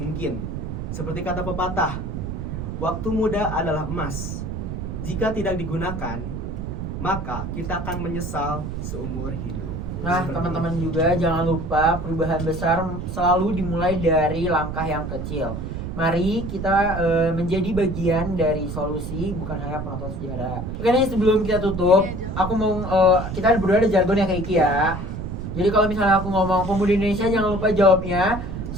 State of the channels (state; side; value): noise; right; rumble, 6 dB below the sound